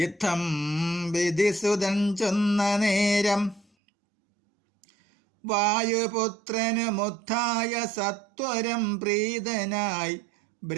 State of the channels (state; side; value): drops out; left; at 3.7 s